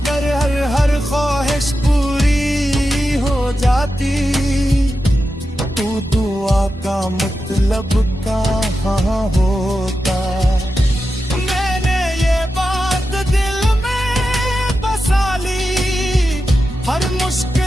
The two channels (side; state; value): both; normal; correlation 0.90